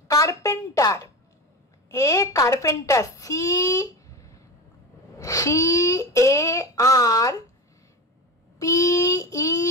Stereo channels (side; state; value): both; normal; correlation 0.25